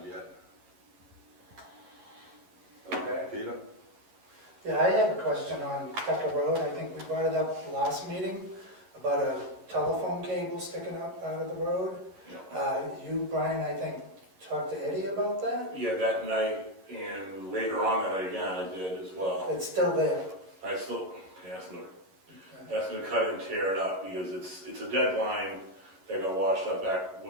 yet. Okay. Peter? Yeah, I have a question on Tucker Road. I think we brought it up last meeting about a telephone cable sticking up out of the road. You, Brian, I think, talked to Eddie about that? Yeah, that night, and later on that night again, I did as well. It's still there. I still asked them to cut it and tear it up, because it's a dead line that got washed up back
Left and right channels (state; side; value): late; left; 11 ms